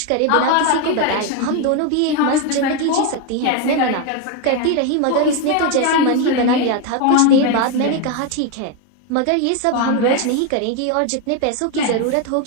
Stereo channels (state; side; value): different; both; correlation 0.02